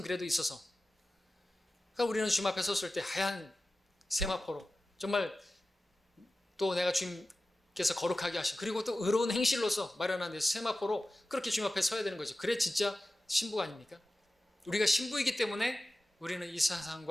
그래도 있어서 그러니까 우리는 주님 앞에 섰을 때 하얀 세마포로 정말 또 내가 주님께서 거룩하게 하신 그리고 또 의로운 행실로서 마련한 세마포로 그렇게 주님 앞에 서야 되는 거죠. 그래 진짜 신부가 아닙니까? 우리가 신부이기 때문에 우리는 이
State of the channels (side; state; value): both; normal; correlation 0.94